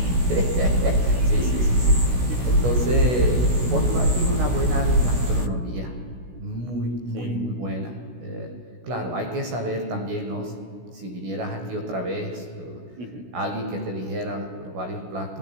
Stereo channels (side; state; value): left; late; 16 ms